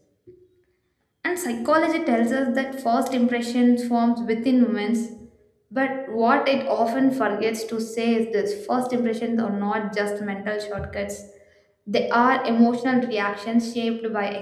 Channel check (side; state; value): both; identical; correlation 1.00